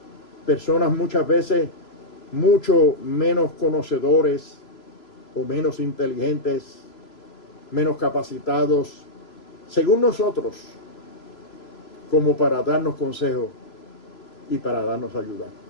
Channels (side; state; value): right; late; 3.0 ms